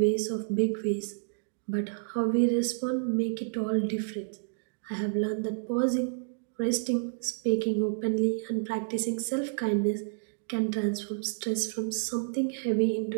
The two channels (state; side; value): silent; left; digital silence